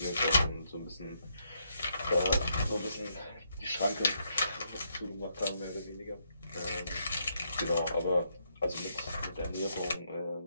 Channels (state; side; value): inverted; both; correlation -0.77